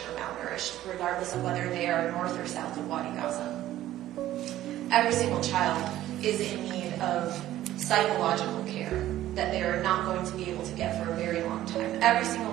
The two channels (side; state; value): left; quieter; 13.8 dB